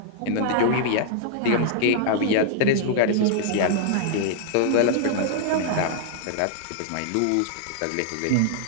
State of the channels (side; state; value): both; different; correlation -0.01